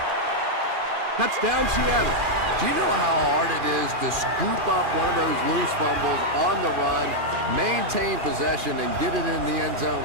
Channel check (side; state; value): left; late; 2.4 ms